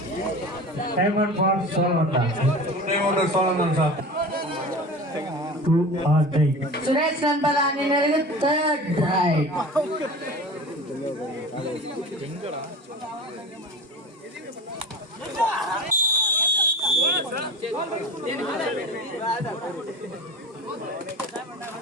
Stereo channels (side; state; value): both; normal; correlation 0.34